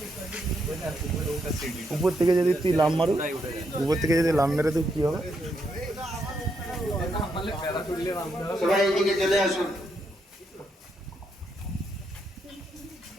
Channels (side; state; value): both; normal; correlation 0.79